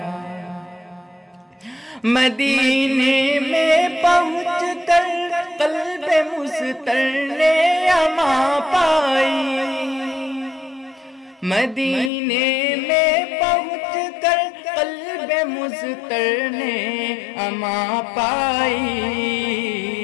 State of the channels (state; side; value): drops out; right; at 12.1 s